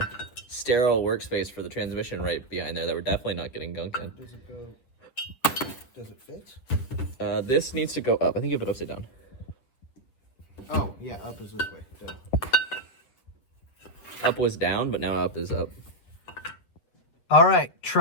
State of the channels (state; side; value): late; right; 7.6 ms